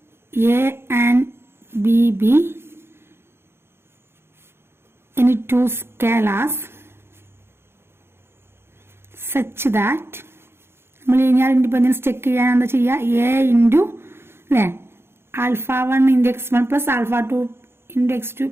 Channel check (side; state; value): left; late; 0.12 ms